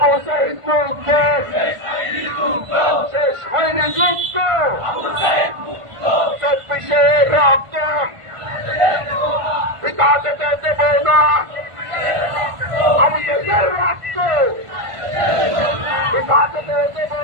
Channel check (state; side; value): late; left; 1.5 ms